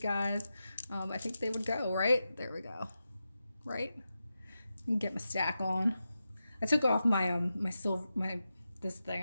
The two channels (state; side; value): inverted; both; correlation -0.90